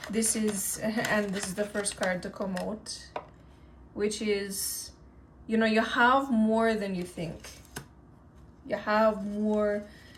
This is, and this is the first card to come out, which is, you know, you have more than you think. You have more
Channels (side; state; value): both; identical; correlation 1.00